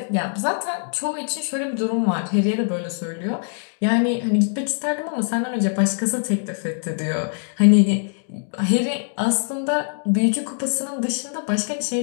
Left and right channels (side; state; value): right; silent; digital silence